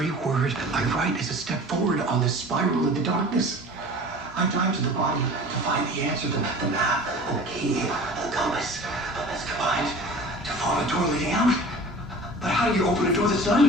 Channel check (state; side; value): normal; both; correlation 0.41